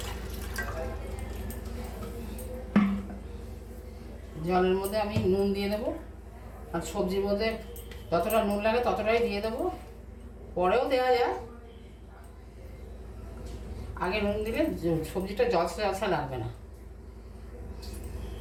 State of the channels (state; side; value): identical; both; correlation 1.00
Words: জলের মধ্যে আমি নুন দিয়ে দেবো, আর সবজির মধ্যে যতটা নুন লাগে ততটাই দিয়ে দেবো, পরেও দেওয়া যায়। আগে নুন দিলে সবজিটা জলসা জলসা লাগবে না।